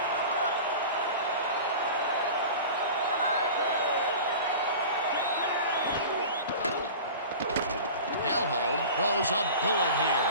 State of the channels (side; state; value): both; inverted; correlation -0.36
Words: Throws a bullet here,